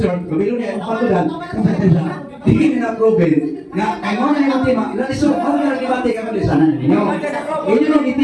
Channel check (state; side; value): identical; both; correlation 1.00